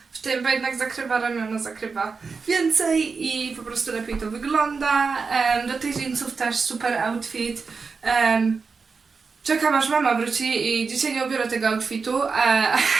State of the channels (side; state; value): left; quieter; 4.9 dB